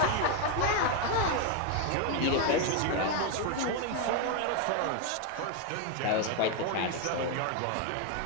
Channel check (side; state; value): both; different; correlation 0.01